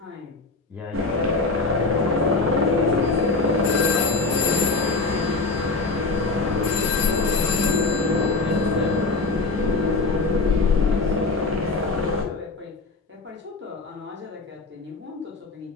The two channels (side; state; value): right; quieter; 3.7 dB